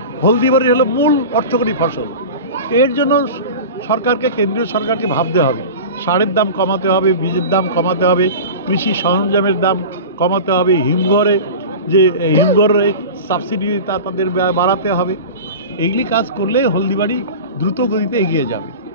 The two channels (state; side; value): inverted; both; correlation -0.31